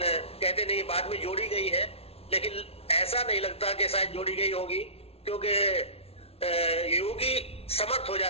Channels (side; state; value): right; late; 0.29 ms